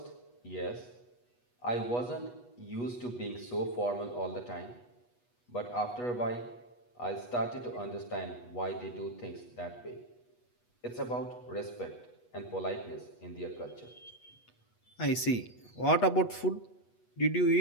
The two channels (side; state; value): right; late; 8.2 ms